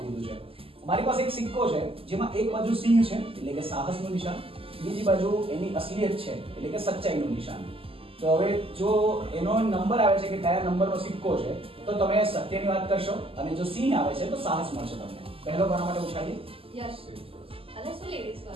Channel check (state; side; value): late; left; 0.27 ms